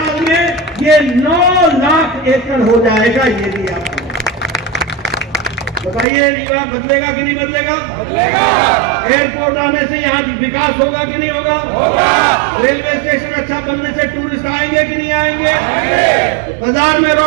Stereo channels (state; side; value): drops out; left; at 6.1 s